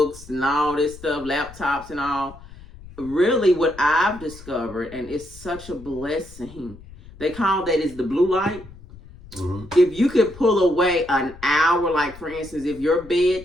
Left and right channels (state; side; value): noise; left; rumble, 19 dB below the sound